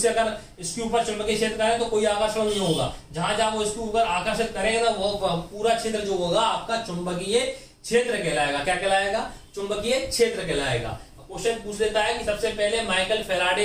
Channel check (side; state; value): both; identical; correlation 1.00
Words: अगर इसके ऊपर चुंबकीय क्षेत्र करें तो कोई आकर्षण नहीं होगा। जहां जहां वो इसके ऊपर आकर्षित करेगा ना वो पूरा क्षेत्र जो होगा आपका चुंबकीय क्षेत्र कहलाएगा। क्या कहलाएगा? चुंबकीय क्षेत्र कहलाएगा। क्वेश्चन पूछ लेता है कि सबसे पहले माइकल